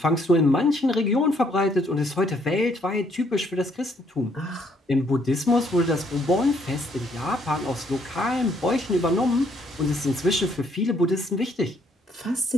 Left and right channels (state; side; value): normal; both; correlation 0.68